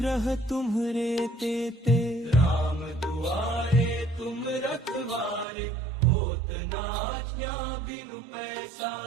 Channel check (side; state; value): left; drops out; at 5.5 s